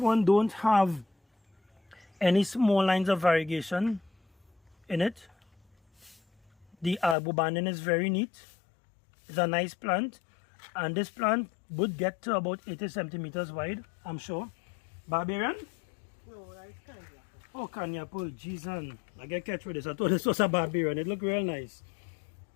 don't have any small lines of variegation in it. The arbor banding is very neat. It's a nice plant. And this plant would get to about 80 centimeters wide, I'm sure. Barbarian? No, that is Kanya. Oh, Kanya apple. Jeez, I get catch with this. I thought this was a barbarian. It looked real nice.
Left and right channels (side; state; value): right; drops out; at 7.2 s